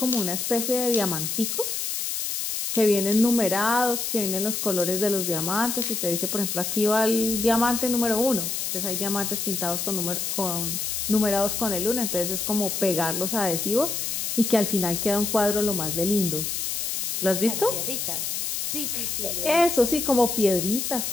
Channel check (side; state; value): left; noise; hiss, 2 dB below the sound